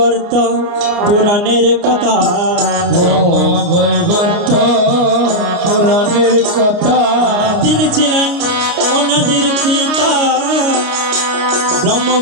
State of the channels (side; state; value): left; late; 29 ms